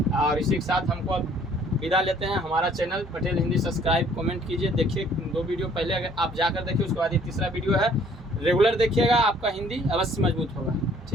और इसी के साथ हमको अब विदा लेते हैं। हमारा channel Patel Hindi subscribe, comment कीजिए। देखिए 2 वीडियो पहले अगर आप जाकर देखिए, उसके बाद ये तीसरा वीडियो है, रेगुलर देखिएगा, आपका हिंदी अवश्य मजबूत होगा।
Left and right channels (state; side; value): normal; both; correlation 0.59